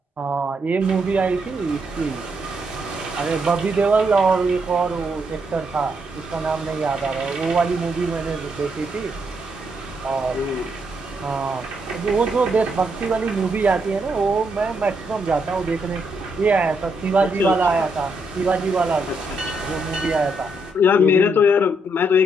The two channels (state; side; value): normal; both; correlation 0.77